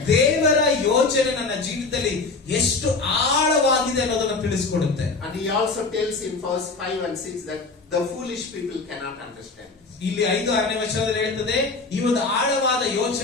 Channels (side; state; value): right; quieter; 3.9 dB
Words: ದೇವರ ಯೋಚನೆ ನನ್ನ ಜೀವಿತದಲ್ಲಿ ಎಷ್ಟು ಆಳವಾಗಿದೆ ಅನ್ನೋದನ್ನು ತಿಳಿಸಿಕೊಡುತ್ತೆ. And he also tells in verse 5 and 6 that the foolish people cannot understand. ಇಲ್ಲಿ 5-6ನೇ ವಚನದಲ್ಲಿ ಹೇಳ್ತದೆ ಈ ಒಂದು ಆಳವಾದ